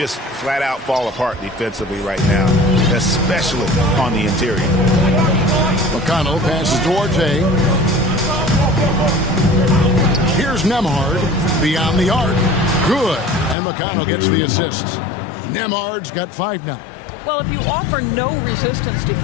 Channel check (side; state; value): right; drops out; at 13.6 s